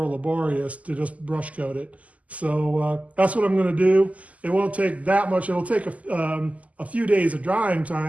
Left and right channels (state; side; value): late; left; 0.072 ms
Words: laborious to just brush coat it. So that's what I'm going to do. It won't take that much. It'll take a few days of drying